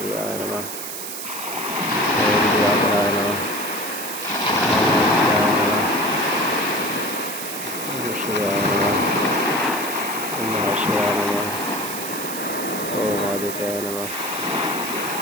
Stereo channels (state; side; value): noise; right; hiss, 7 dB below the sound